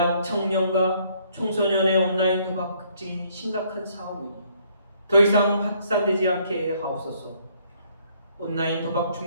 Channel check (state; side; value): inverted; both; correlation -0.65